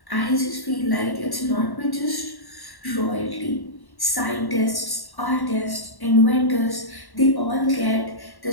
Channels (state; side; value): late; right; 1.1 ms